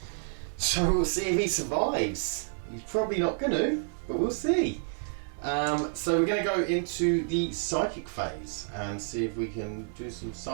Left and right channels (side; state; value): left; silent; digital silence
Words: So we'll see if he survives. He's probably not gonna, but we'll see. So we're going to go into the psychic phase and see if we can do some